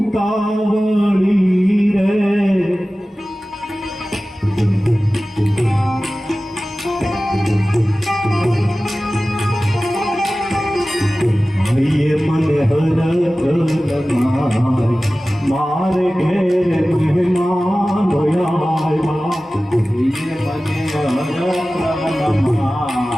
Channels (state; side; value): normal; both; correlation 0.96